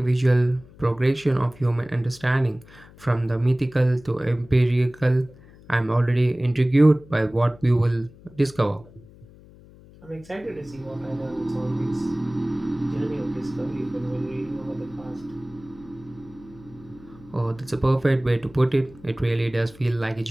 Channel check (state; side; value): noise; left; hum, 23 dB below the sound